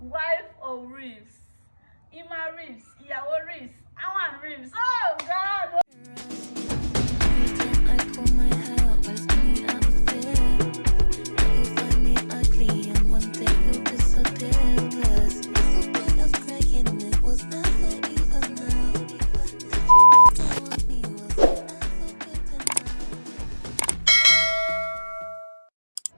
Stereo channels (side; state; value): both; inverted; correlation -1.00